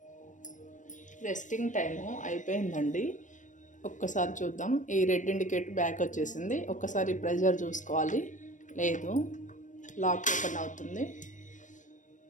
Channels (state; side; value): late; right; 0.37 ms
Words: రెస్టింగ్ టైము అయిపోయిందండి. ఒక్కసారి చూద్దాం. ఈ రెడ్ ఇండికేట్ బ్యాక్ వచ్చేసింది. ఒక్కసారి ప్రెషర్ చూసుకోవాలి. లేదు, లాక్ ఓపెన్ అవుతుంది.